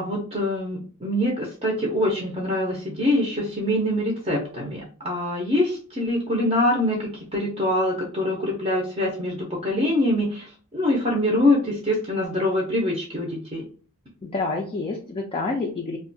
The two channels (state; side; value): normal; both; correlation 0.44